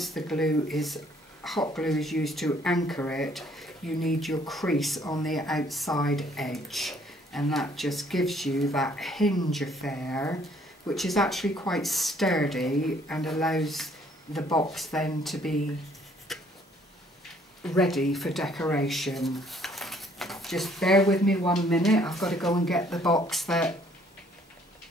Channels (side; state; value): both; normal; correlation 0.62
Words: the hot glue is used to anchor it, you need your crease on the outside edge, and that just gives you that hinge affair, which is actually quite sturdy and allows the box then to be ready for decoration. Just bear with me 1 minute, I've got to go and get the box that